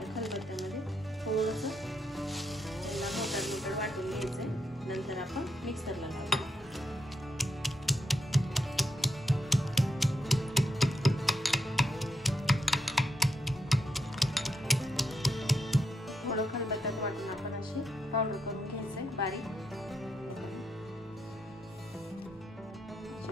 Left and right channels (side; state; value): both; normal; correlation 0.78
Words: खलबत्त्यामध्ये थोडंसं मोठं वाटून घ्यायचंय। नंतर आपण मिक्सरला लावू। थोडं खलबत्त्यात वाटून आपण अशी पावडर करून घ्यायचंय बारीक।